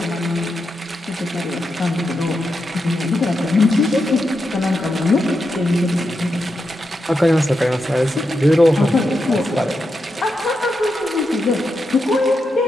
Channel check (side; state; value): both; normal; correlation 0.86